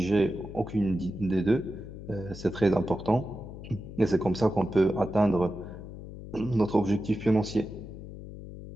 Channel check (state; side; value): noise; left; hum, 12 dB below the sound